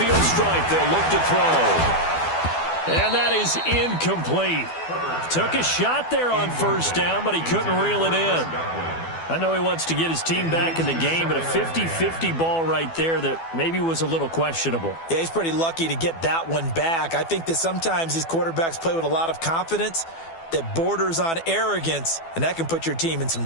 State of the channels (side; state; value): right; late; 12 ms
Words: stripe, they'll look to throw. And that is incomplete. Took a shot there on first down, but he couldn't reel it in. I know he wants to get his team back in the game, but a 50-50 ball right there that maybe was a little questionable. Yeah, he's pretty lucky to get that one back. I think that sometimes these quarterbacks play with a lot of confidence that borders on arrogance, and that can put your team in some